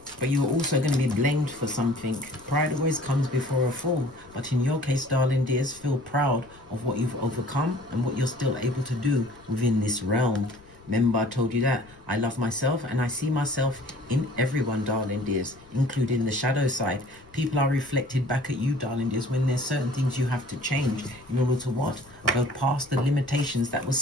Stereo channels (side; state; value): left; noise; rumble, 25 dB below the sound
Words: But you're also going to be blamed for something. Pride always comes before a fall. But in your case, darling dears, feel proud of what you've overcome and what you're still able to do within this realm. Remember, I told you that I love myself and I see myself in everyone, darling dears, including the shadow side. People are reflected back at you, darling dears, when there's certain things you have to change in order to what? Go past the limitations that was